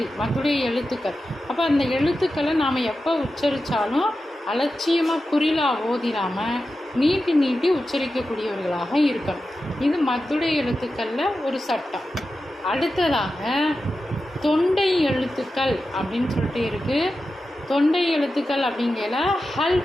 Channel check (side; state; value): both; normal; correlation 0.92